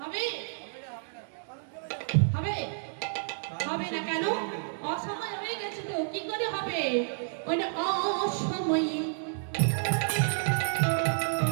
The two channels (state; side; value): silent; left; digital silence